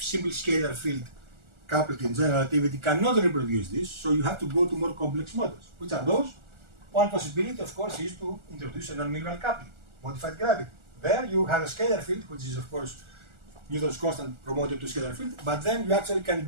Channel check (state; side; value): late; left; 1.4 ms